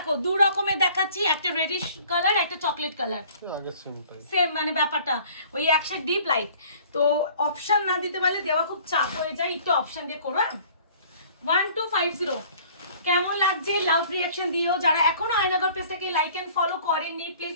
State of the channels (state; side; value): inverted; both; correlation -0.52